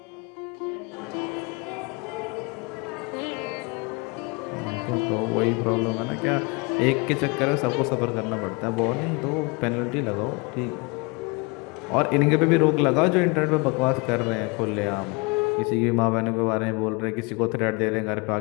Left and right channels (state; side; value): quieter; right; 29.1 dB